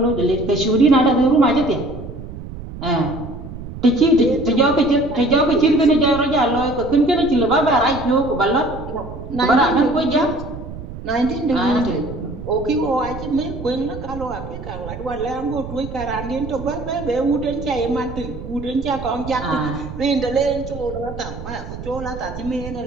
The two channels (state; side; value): noise; right; rumble, 11 dB below the sound